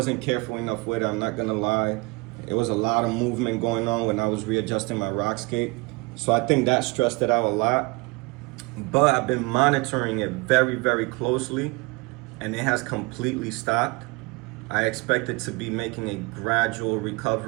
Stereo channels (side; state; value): left; quieter; 26.7 dB